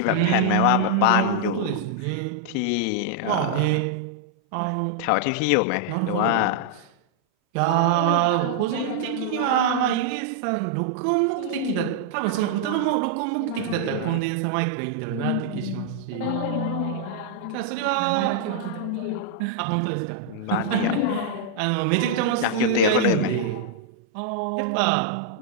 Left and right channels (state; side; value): different; both; correlation -0.01